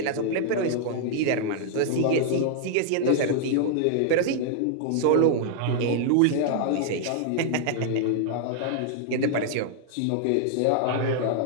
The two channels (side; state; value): both; different; correlation -0.01